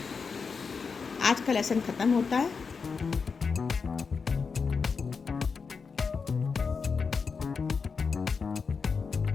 आज का लेसन ख़त्म होता है।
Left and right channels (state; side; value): quieter; right; 5.3 dB